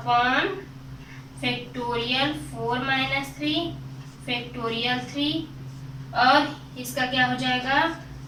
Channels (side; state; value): both; identical; correlation 1.00